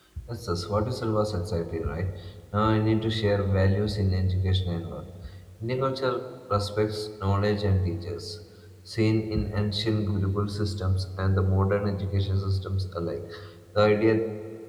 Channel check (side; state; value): both; identical; correlation 1.00